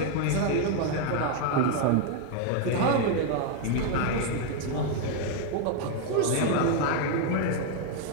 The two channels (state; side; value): different; both; correlation 0.01